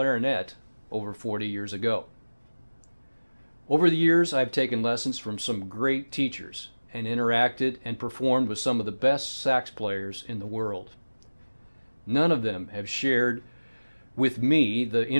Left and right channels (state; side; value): inverted; both; correlation -1.00